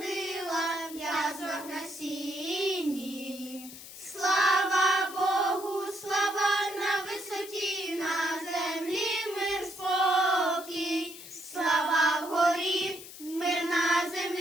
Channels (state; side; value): noise; left; hiss, 14 dB below the sound